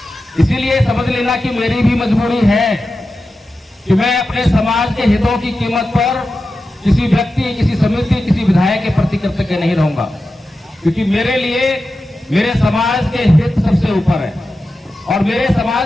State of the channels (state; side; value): normal; both; correlation 0.92